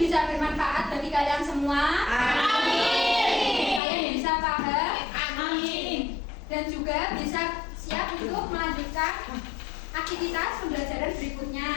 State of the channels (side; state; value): right; drops out; at 3.8 s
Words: bisa bermanfaat bagi kalian semua. Amin. Kalian bisa paham. Amin. Dan juga bisa siap untuk melanjutkan aktivitas pembelajaran berikutnya.